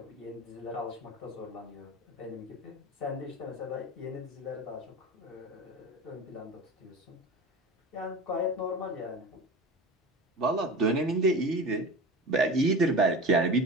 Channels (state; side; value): normal; both; correlation 0.33